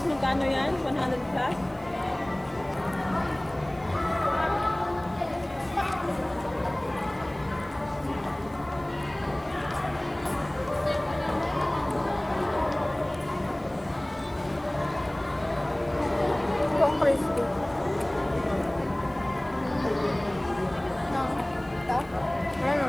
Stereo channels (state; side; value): noise; left; hiss, 29 dB below the sound